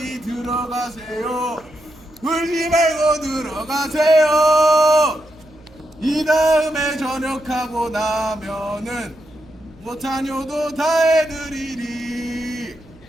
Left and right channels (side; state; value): right; noise; hum, 26 dB below the sound